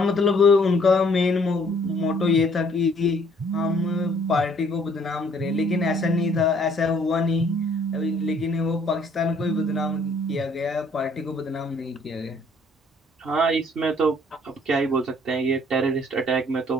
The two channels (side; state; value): both; normal; correlation 0.61